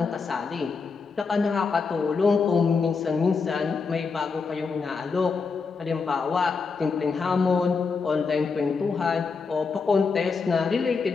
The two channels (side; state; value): right; quieter; 4.9 dB